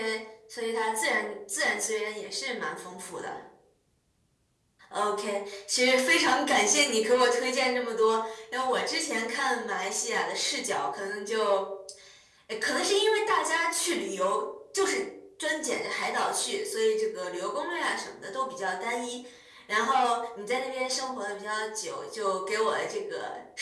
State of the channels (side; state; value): both; identical; correlation 1.00